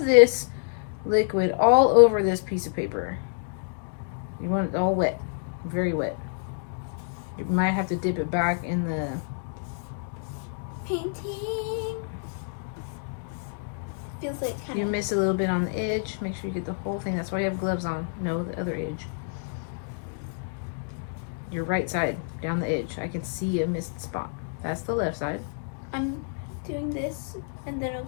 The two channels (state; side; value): silent; right; digital silence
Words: liquid all over this piece of paper. You want it all wet, very wet. You might have to dip it back in the painting. Feels like kind of. You miss a little bit on the edge. Make sure you get the whole thing. That's why you have gloves on. No, the other edge. Your right side, down the edge. I can see a missed spot. That's the left side. I'm doing this, and then I'll